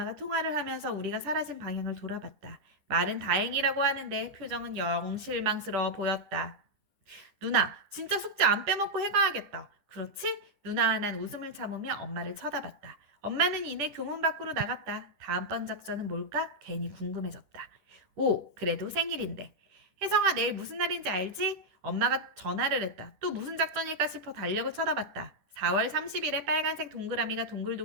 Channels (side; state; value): left; late; 10 ms